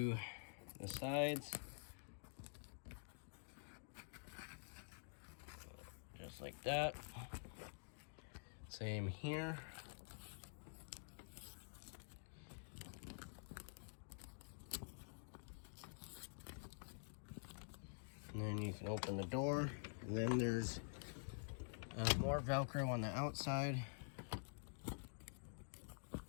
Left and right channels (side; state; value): right; silent; digital silence